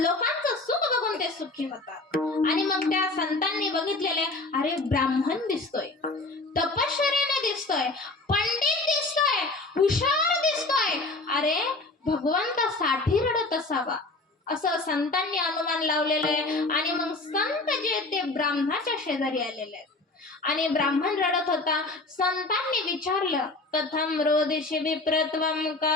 सुख बघून ते सुखी होतात. आणि मग त्या संतांनी बघितलेले, अरे ब्राह्मण दिसतोय, तपश्चर्याने दिसतोय, पंडित दिसतोय, हुशार दिसतोय, अरे भगवंतासाठी रडत असावा, असं संतांनी अनुमान लावलेलं आहे. आणि मग संत जे ते ब्राह्मणाच्या शेजारी आलेले आहेत आणि ब्राह्मण रडत होता. संतांनी विचारलं, कथम रोदिषि विप्रत्वं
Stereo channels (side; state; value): right; quieter; 3.2 dB